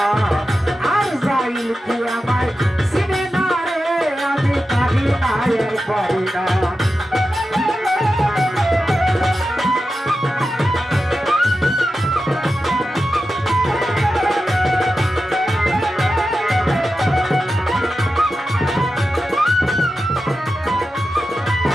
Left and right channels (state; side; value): normal; both; correlation 0.91